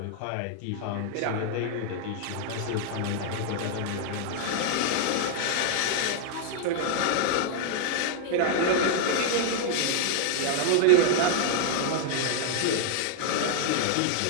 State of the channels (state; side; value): different; both; correlation -0.01